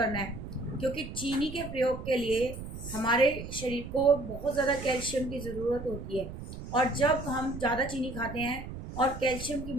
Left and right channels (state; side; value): noise; right; rumble, 10 dB below the sound